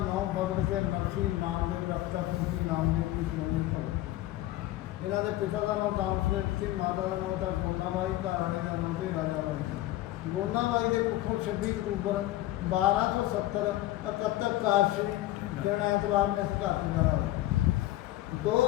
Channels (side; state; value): right; quieter; 15.7 dB